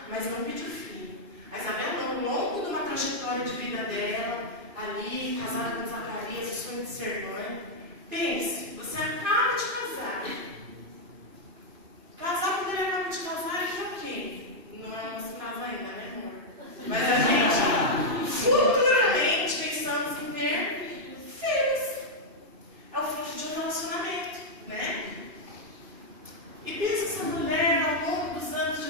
mas não pediu filho. A Isabel não, ao longo de uma trajetória de vida dela, ali, casada com Zacarias, o sonho de ser mãe. Pense, você acaba de casar. Casar quando ele acaba de casar é o quê? Não é nosso caso ainda, né, amor? Mas a gente, futuramente, pensamos em ter filhos. É o fruto de um relacionamento, né? E pensa essa mulher, ao longo dos anos de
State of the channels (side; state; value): left; late; 2.5 ms